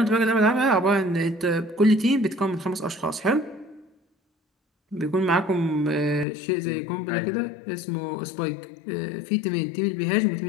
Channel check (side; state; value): right; drops out; at 6.2 s